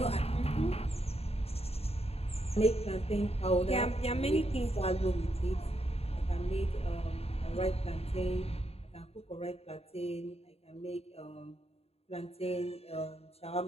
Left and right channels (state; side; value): late; right; 0.29 ms